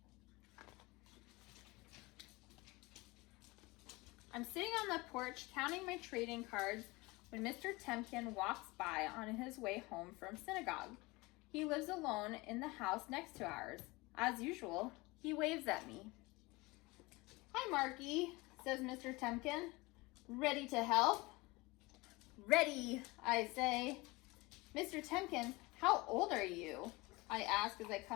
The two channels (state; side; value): quieter; right; 23.2 dB